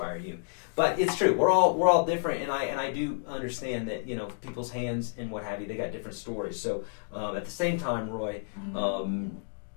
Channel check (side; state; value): right; silent; digital silence